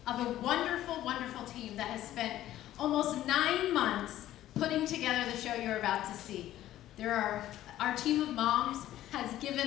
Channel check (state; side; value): quieter; right; 13.5 dB